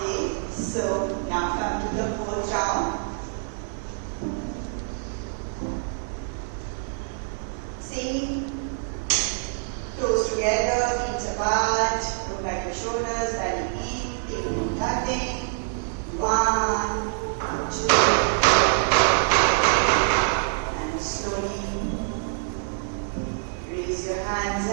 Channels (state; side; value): silent; left; 61 dB below the other